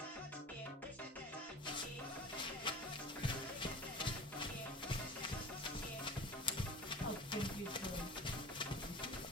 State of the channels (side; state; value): both; normal; correlation 0.36